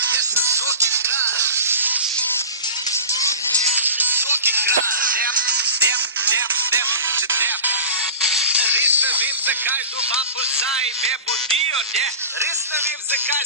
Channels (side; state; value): both; inverted; correlation -0.34